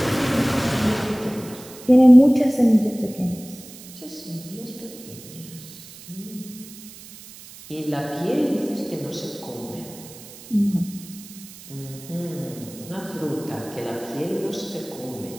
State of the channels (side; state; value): right; noise; hiss, 17 dB below the sound